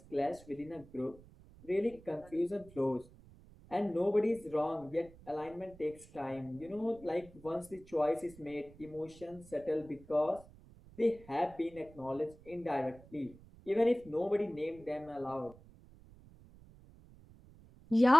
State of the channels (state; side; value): noise; right; rumble, 22 dB below the sound